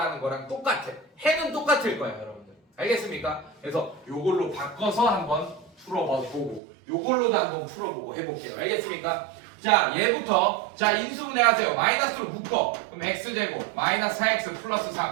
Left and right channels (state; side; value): drops out; left; at 6.6 s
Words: 거랑 똑같아. 해는 똑같을 거야 여러분들. 알겠습니까? 그래서 요걸로 바꿔서 한번 풀어보고 요걸로도 한번 풀어보고 해볼게요. 알겠습니까? 자 얘부터 자 인수분해 하세요. 마이너스로 묶어. 그럼 x제곱 마이너스 4x 플러스